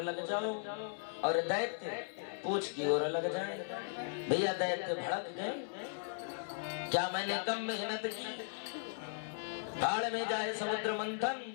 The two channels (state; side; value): silent; right; 53 dB below the other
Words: लग जाओ और दैत्य पूंछ की ओर लग जाए। भैया दैत्य भड़क गए, क्या मैंने कम मेहनत की? भाड़ में जाए समुद्र मंथन,